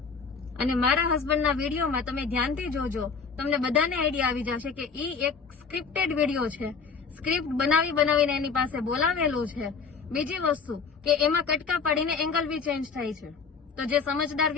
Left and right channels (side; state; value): right; quieter; 5.4 dB